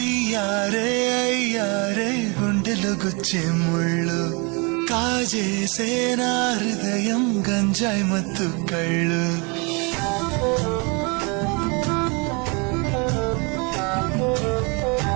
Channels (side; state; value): left; quieter; 30.8 dB